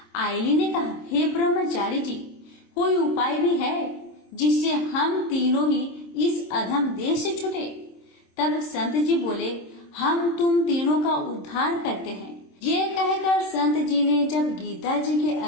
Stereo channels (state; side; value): late; right; 26 ms